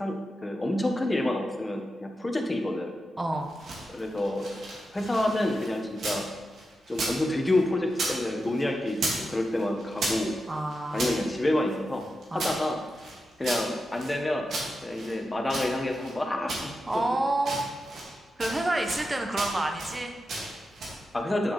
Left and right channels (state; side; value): normal; both; correlation 0.89